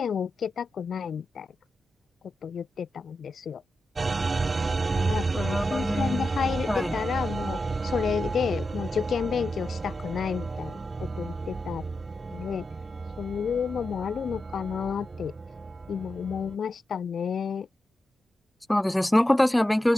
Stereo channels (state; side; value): normal; both; correlation 0.89